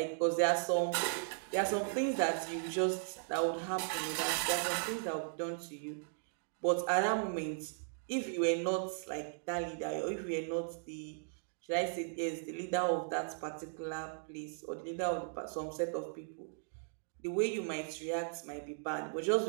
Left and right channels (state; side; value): silent; left; digital silence